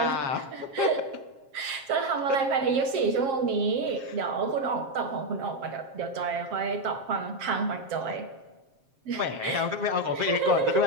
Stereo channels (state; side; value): late; left; 7.5 ms